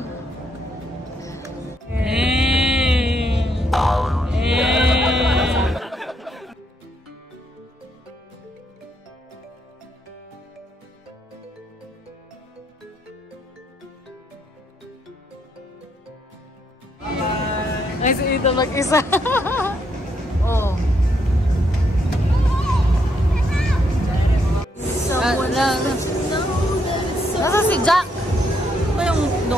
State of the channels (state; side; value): normal; both; correlation 0.75